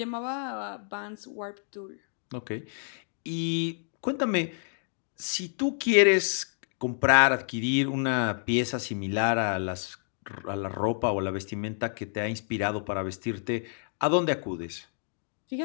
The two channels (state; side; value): silent; right; 58 dB below the other